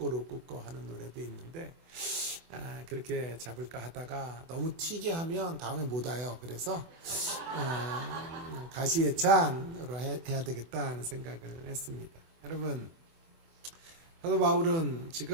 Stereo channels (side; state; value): left; late; 24 ms